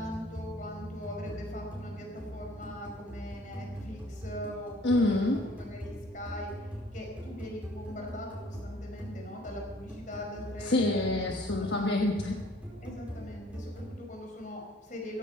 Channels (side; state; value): both; normal; correlation 0.56